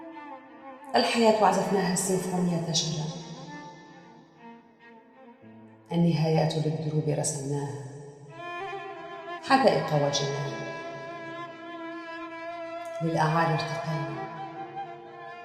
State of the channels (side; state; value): both; identical; correlation 1.00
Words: الحياة عزفناها السيمفونية شجا، النهايات للدروب رسمناها، حدائق وجنان، للأعالي ارتقينا،